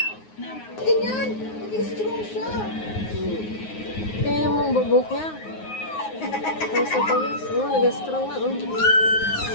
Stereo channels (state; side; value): late; right; 9.6 ms